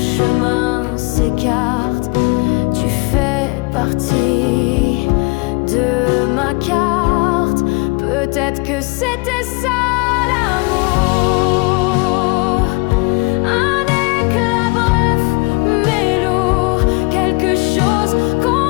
s'écartent, tu fais partie de ma carte. Peut-être que c'était ça l'amour. Un éclat bref mais lourd, quelque chose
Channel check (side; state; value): right; quieter; 27.8 dB